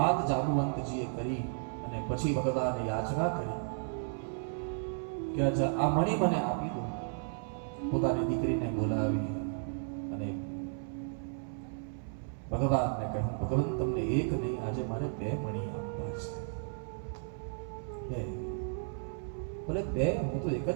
જાંબુવંતજીએ કરી. અને પછી ભગવાને યાચના કરી કે આ મણી મને આપી દો. પોતાની દીકરીને બોલાવી અને ભગવાનને કહ્યું ભગવાન તમને એક નહીં આજે મારે 2 મણી આપવા છે. ભલે 2, હું તો એક જ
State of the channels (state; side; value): silent; left; 55 dB below the other